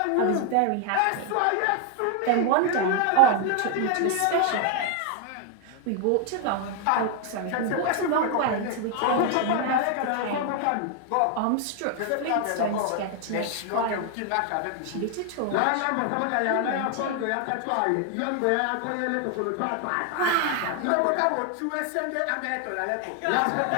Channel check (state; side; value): different; both; correlation 0.00